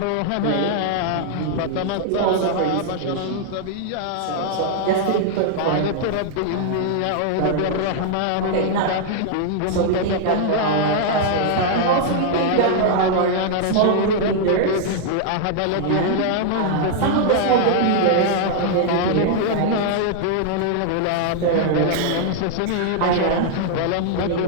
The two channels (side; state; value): both; different; correlation 0.00